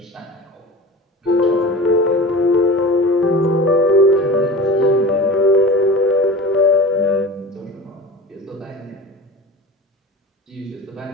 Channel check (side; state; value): both; normal; correlation 0.35